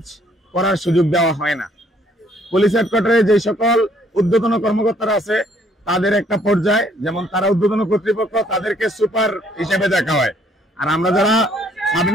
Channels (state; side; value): normal; both; correlation 0.64